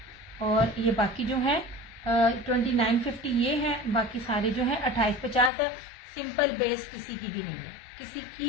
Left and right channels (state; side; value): drops out; right; at 5.5 s